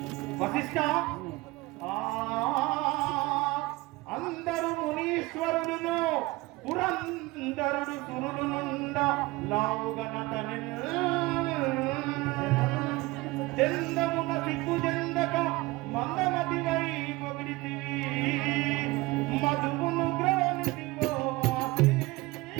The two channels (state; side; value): quieter; left; 21.3 dB